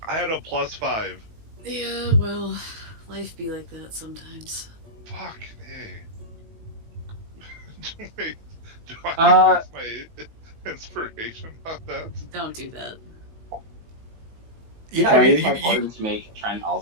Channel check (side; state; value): left; late; 18 ms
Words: had a +5. Yeah, well, life be like that sometimes. Fuck, hey. Wait, do I Uh, use my inspiration on that? Don't do that. Yeah, Can I I mean, use my pardon to make Trent